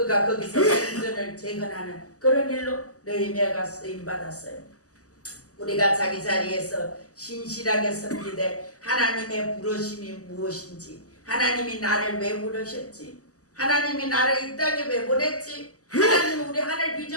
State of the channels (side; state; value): right; late; 0.66 ms